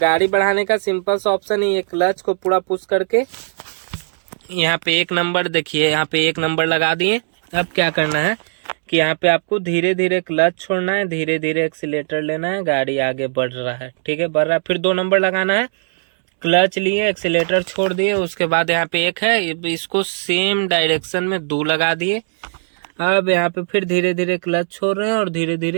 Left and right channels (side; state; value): left; silent; digital silence